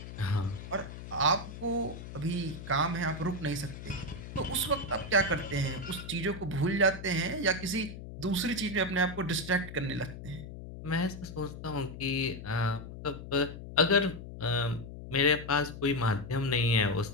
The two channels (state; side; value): noise; left; hum, 11 dB below the sound